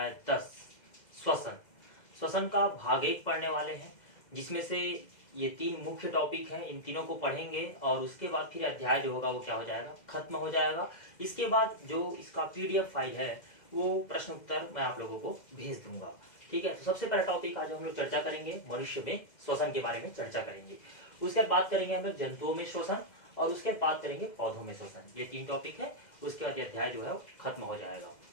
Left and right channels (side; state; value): right; late; 2.0 ms